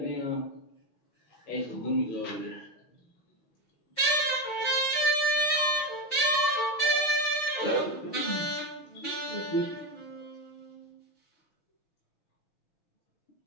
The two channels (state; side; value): late; right; 6.3 ms